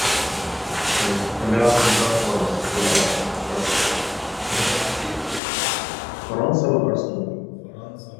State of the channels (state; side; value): drops out; right; at 5.4 s